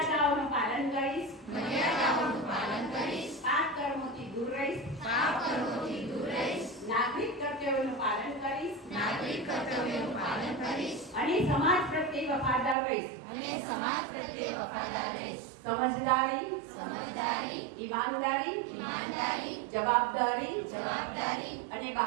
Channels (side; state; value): left; drops out; at 12.8 s